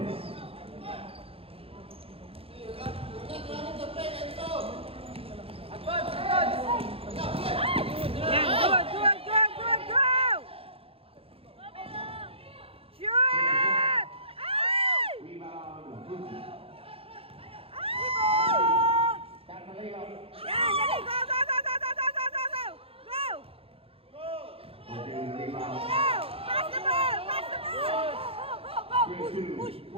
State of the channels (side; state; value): left; late; 0.27 ms